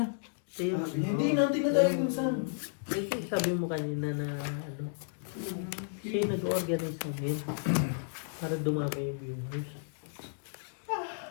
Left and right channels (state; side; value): silent; right; digital silence